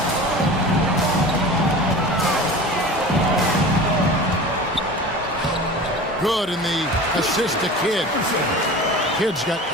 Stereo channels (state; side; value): normal; both; correlation 0.36